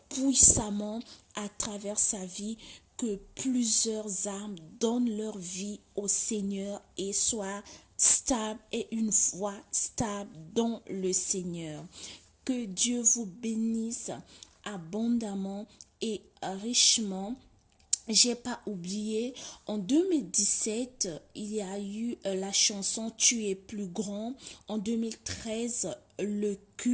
puissamment à travers sa vie, que plusieurs âmes donnent leur vie au Seigneur et soient stables et une foi stable dans le Seigneur. Que Dieu vous bénisse abondamment et richement. J'ai pas oublié, en 2017, il y a eu la chanson Tu es plus grand. En 2013, le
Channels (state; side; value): identical; both; correlation 1.00